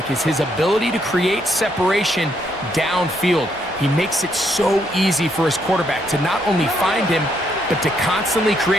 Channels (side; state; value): both; normal; correlation 0.74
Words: is his ability to create separation downfield. He makes it so easy for his quarterback to not only find him, but to constantly